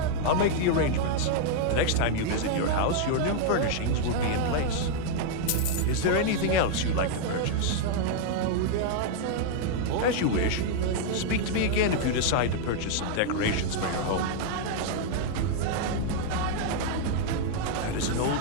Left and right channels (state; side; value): different; both; correlation -0.01